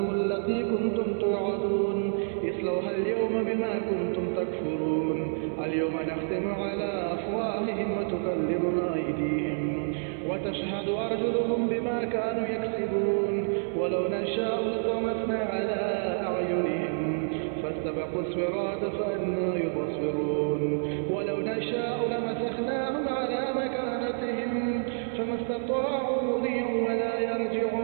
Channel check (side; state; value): left; silent; 57 dB below the other